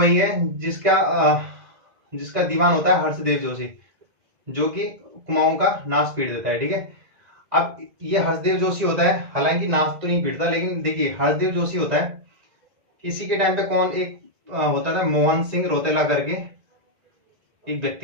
है जिसका दीवान होता है हर्षदेव जोशी, जो कि कुमाऊं का नाश पीट देता है। ठीक है, अब ये हर्षदेव जोशी होता है, हालांकि नाश तो नहीं पीटता, लेकिन देखिए हर्षदेव जोशी होता है, इसी के टाइम पे कौन एक होता था, मोहन सिंह रोतेला करके एक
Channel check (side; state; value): left; late; 2.0 ms